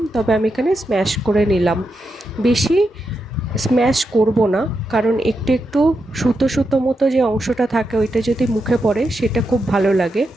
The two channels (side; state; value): both; normal; correlation 0.85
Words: তবে আমি এখানে স্ম্যাশ করে নিলাম। বেশি স্ম্যাশ করব না, কারণ একটু একটু সুতো সুতো মতো যে অংশটা থাকে ওইটা যদি মুখে পড়ে সেটা খুব ভালো লাগে।